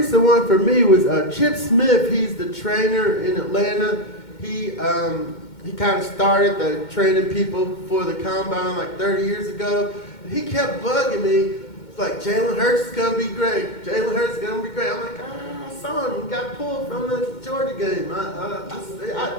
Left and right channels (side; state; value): right; late; 2.2 ms